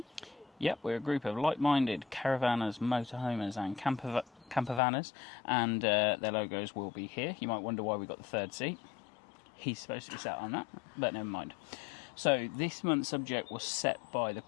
Yep, we're a group of like-minded caravanners, motorhomers and campervanners, and their logos will be here. You might wonder why we got the third seat. He's supposed to be sat on that, but never mind. So this month's subject was set by the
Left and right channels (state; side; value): drops out; right; at 4.8 s